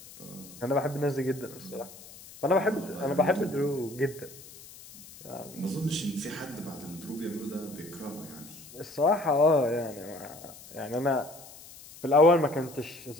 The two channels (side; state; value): left; noise; hiss, 18 dB below the sound